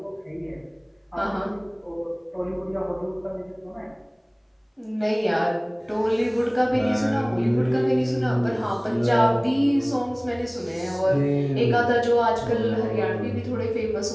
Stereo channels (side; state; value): both; identical; correlation 1.00